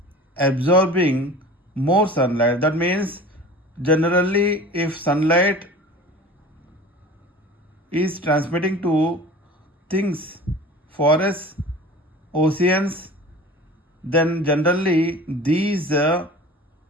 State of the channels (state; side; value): normal; both; correlation 0.40